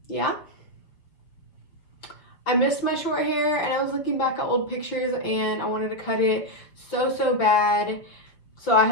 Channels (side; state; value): right; late; 5.8 ms